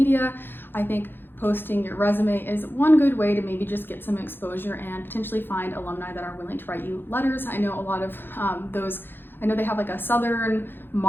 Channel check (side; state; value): right; late; 0.10 ms